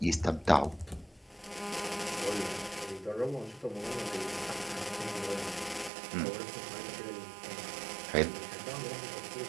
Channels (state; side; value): drops out; left; at 5.9 s